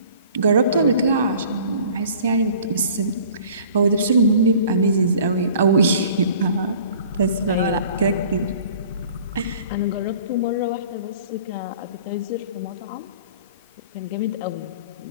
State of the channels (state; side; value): inverted; both; correlation -0.48